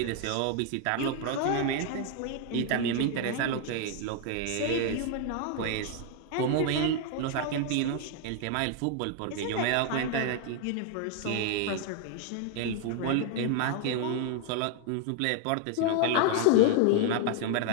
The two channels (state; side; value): different; both; correlation 0.00